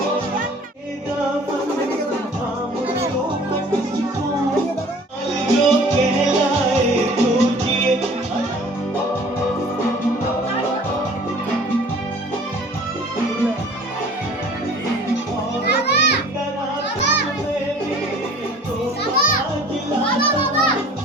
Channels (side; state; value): both; normal; correlation 0.49